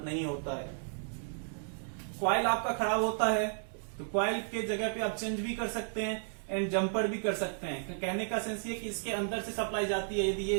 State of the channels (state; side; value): silent; left; digital silence